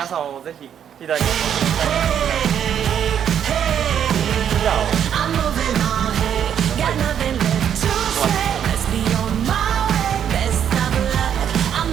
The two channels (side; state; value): left; quieter; 9.0 dB